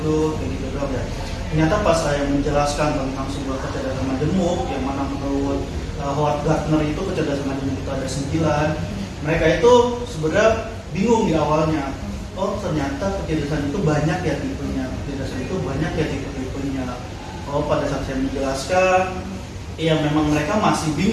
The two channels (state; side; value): identical; both; correlation 1.00